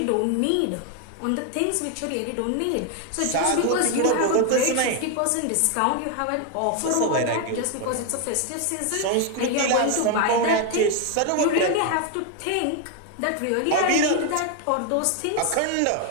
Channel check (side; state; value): both; different; correlation 0.01